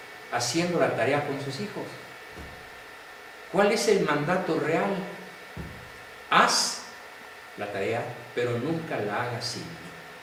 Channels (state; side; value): identical; both; correlation 1.00